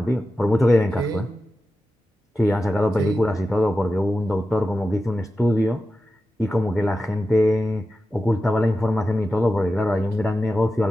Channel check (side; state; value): both; normal; correlation 0.92